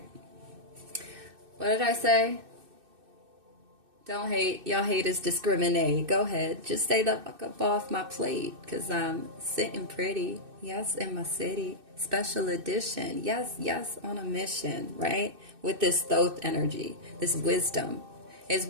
What did I say? Don't hate. Y'all hate is discriminate. Go ahead. Just stay the fuck up off my plate, because I'm sitting pretty. Yes, in my city. Special edition. Yes, yes, on a mission, right? With this Thoth energy, this wisdom. It's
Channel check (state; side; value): late; left; 2.6 ms